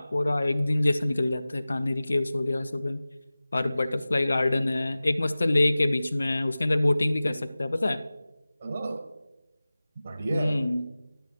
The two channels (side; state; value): both; inverted; correlation -0.97